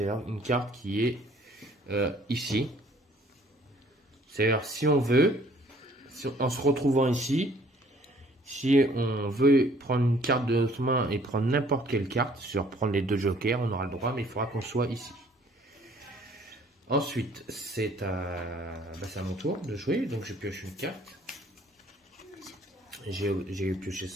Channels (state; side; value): normal; both; correlation 0.58